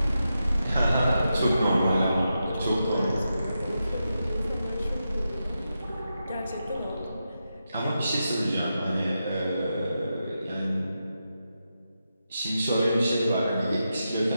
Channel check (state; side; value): inverted; both; correlation -0.88